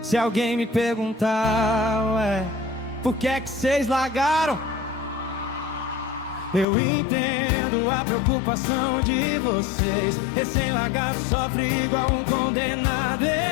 Se alguém me perguntar, ué, por que é que cês largaram? Eu entendo a preocupação de vocês. Recém-largado sofre igual um condenado.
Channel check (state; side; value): drops out; right; at 6.7 s